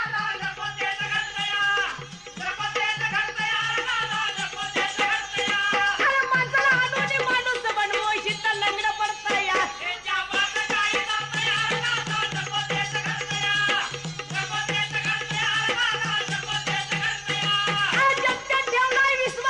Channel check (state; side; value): identical; both; correlation 1.00